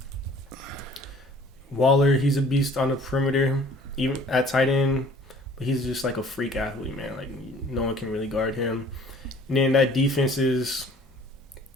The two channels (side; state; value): both; normal; correlation 0.52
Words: Waller, he's a beast on the perimeter, even at tight end. But he's just like a freak athlete, man. Like, no one can really guard him. And then that defense is